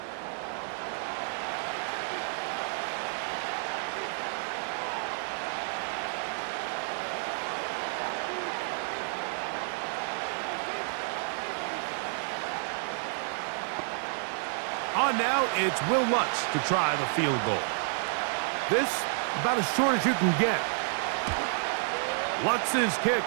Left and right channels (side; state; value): left; silent; 57 dB below the other